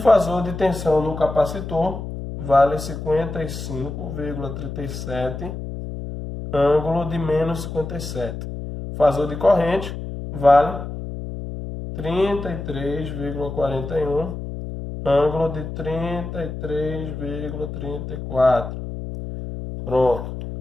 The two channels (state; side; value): noise; left; hum, 7 dB below the sound